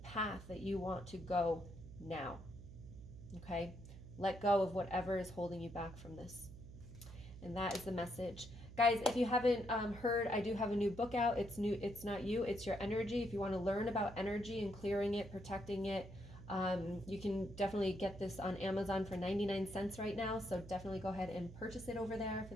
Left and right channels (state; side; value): noise; right; hum, 15 dB below the sound